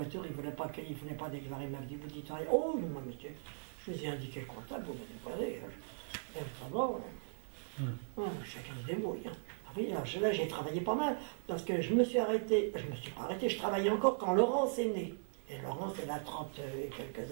ils ne voulaient pas déclarer. Ils m'avaient dit, vous dites rien. Oh, non, monsieur, je vous ai indiqué le comptable, vous me déclarez. Chacun se débrouille. Hein. Oui, là, j'ai travaillé pas mal, parce que je me suis pas arrêté, je travaillais encore quand Laurence est née. Et Laurence, elle a 30 et quelques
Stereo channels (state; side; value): silent; left; 52 dB below the other